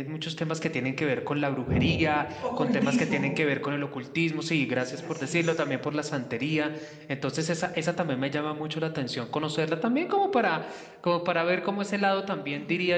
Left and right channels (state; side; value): identical; both; correlation 1.00